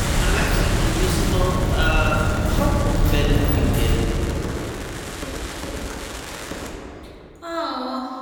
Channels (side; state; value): both; identical; correlation 1.00